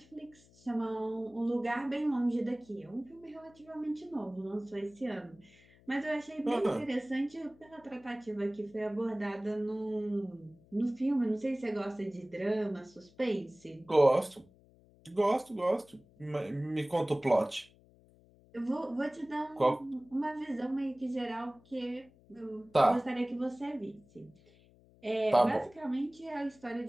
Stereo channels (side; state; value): left; noise; hum, 27 dB below the sound